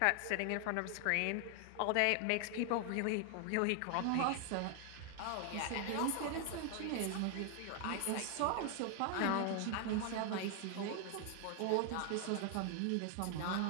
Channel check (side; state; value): both; different; correlation 0.00